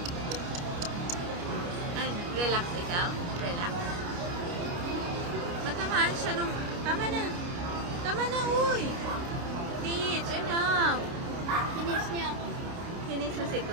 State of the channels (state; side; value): late; left; 29 ms